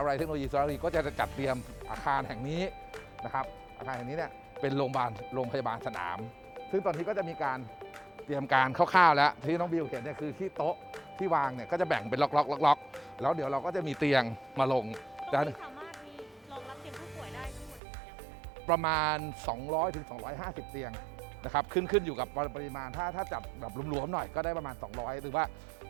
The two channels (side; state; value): left; drops out; at 17.8 s